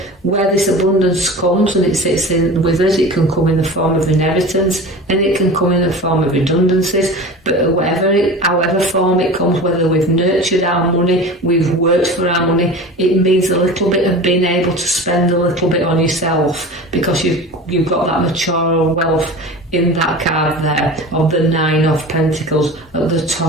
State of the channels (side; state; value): both; normal; correlation 0.34